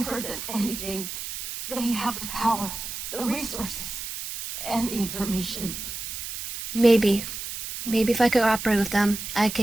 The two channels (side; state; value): right; noise; hiss, 7 dB below the sound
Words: than anything, they have the power, the resources, and the information. Maybe if I could cooperate with them, I